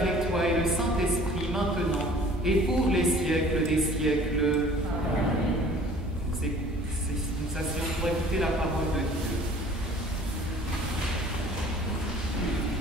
toi et le Saint-Esprit maintenant et pour les siècles des siècles. Amen. Nous asseyons pour écouter la parole de Dieu.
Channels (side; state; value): both; normal; correlation 0.50